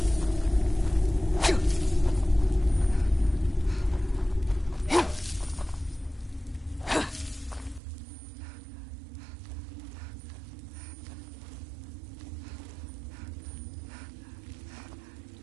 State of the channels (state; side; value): drops out; left; at 7.8 s